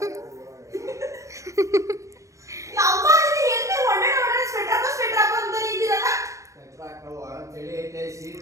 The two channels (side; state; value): left; late; 0.15 ms